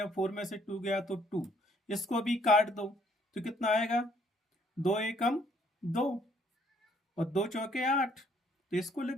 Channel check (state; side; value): normal; both; correlation 0.64